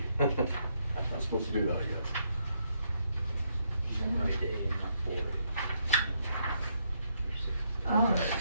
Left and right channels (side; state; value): both; inverted; correlation -0.75